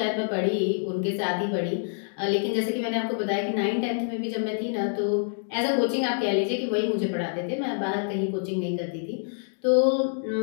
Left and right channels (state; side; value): silent; right; digital silence